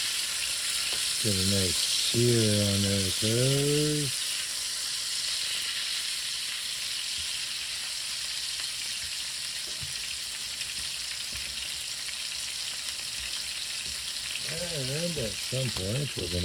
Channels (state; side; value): identical; both; correlation 1.00